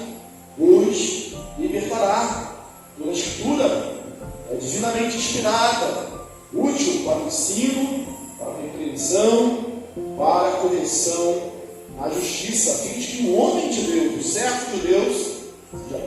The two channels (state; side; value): identical; both; correlation 1.00